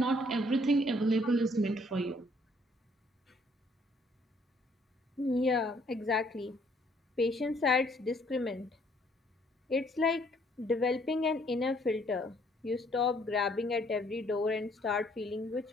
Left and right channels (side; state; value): both; normal; correlation 0.64